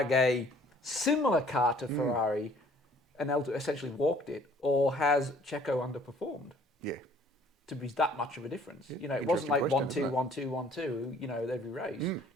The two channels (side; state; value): both; normal; correlation 0.56